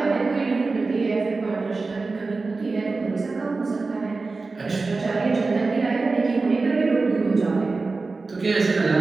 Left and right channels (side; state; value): left; quieter; 3.8 dB